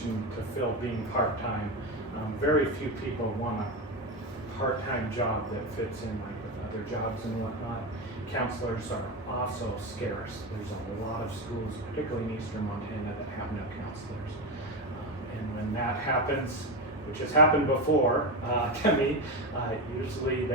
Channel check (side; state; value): both; normal; correlation 0.16